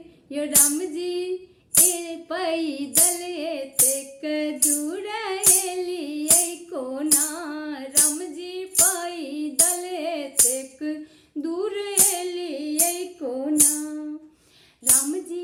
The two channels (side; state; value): both; identical; correlation 1.00